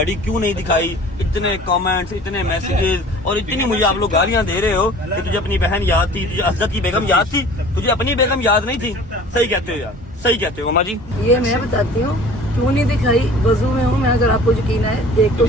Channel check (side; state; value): both; normal; correlation 0.46